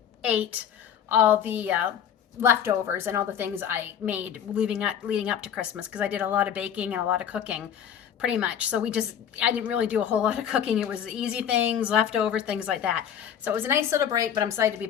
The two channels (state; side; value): quieter; right; 8.9 dB